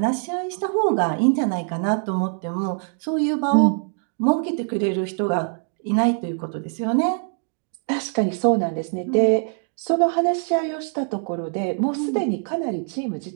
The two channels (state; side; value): silent; left; 56 dB below the other